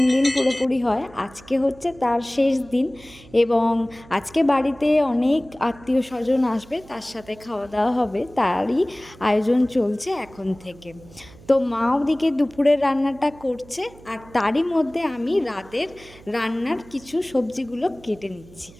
দিন পুরোপুরি হয়। আজকে হচ্ছে তার শেষ দিন এবং আজকে বাড়িতে অনেক আত্মীয় স্বজন আসবে, তার সাথে খাওয়া দাওয়া হবে, তারই আয়োজন চলছে এখন থেকে। তো মা ওদিকে দুপুরের রান্নাটা করছে আর তারই মধ্যে আমি রাতের রান্নার কিছু সবজিগুলো কেটে নিচ্ছি।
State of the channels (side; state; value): right; noise; hum, 22 dB below the sound